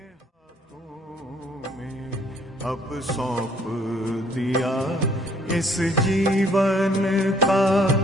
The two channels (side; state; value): both; normal; correlation 0.62